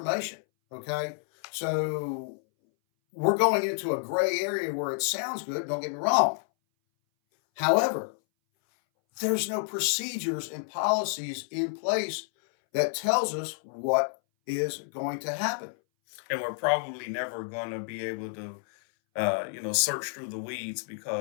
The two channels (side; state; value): right; silent; 58 dB below the other